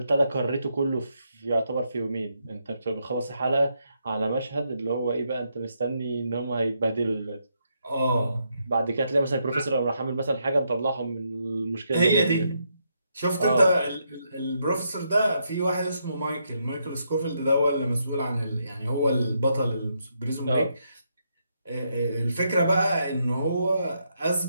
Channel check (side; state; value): both; inverted; correlation -0.78